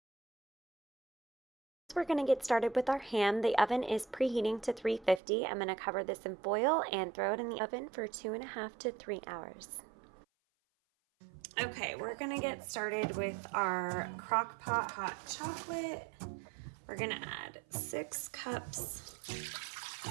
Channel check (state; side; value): drops out; left; at 5.2 s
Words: We're going to get started with our ham. The oven is preheating to 350. I'm going to cover this in foil and throw it in the oven for 2.5 to 3 hours. Okay, we're going to get started with our crock pot hot chocolate. We're going to add 6 cups